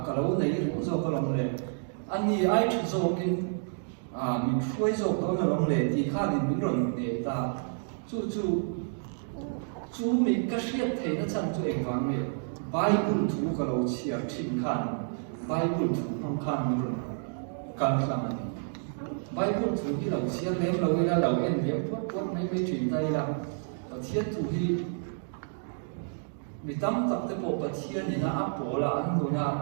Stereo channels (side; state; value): left; silent; digital silence